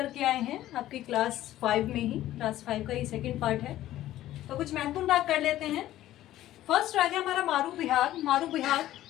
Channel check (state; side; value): quieter; right; 14.0 dB